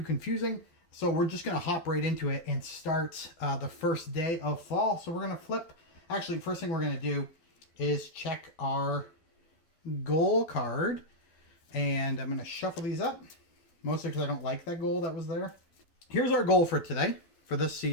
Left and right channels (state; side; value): late; right; 12 ms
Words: confusing. So we're just going to hop right into it and start the first day of fall. So we're going to flip. Actually, first thing we're going to do is check our goal card. And I'm going to shuffle these up. Mostly because I don't like that goal that was there. Here's our goal for today, for this